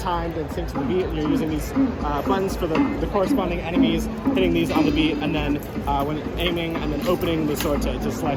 and synced to the beat. And you're using these buttons for the corresponding enemies, hitting these on the beat, and then when aiming and then opening the sword to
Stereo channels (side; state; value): both; identical; correlation 1.00